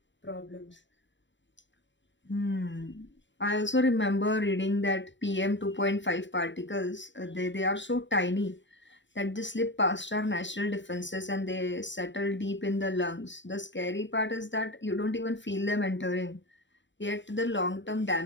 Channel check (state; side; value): late; right; 0.54 ms